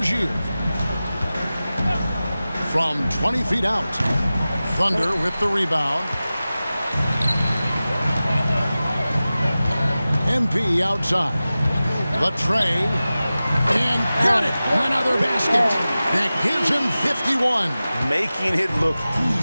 From 20 feet out. Thunder with the rebound. MP outside. Latre. And got it. Another basket. That gives him 51. Making it look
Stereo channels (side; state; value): both; inverted; correlation -0.96